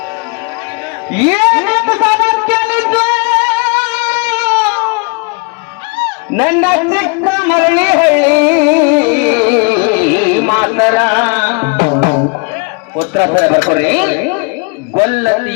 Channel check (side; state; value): right; quieter; 32.3 dB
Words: ನನ್ನ ಚಿಕ್ಕ ಮರಳಿ ಹಳ್ಳಿ ಮಾತರ ಉತ್ತರ ಬರ್ಕೊಡ್ರಿ.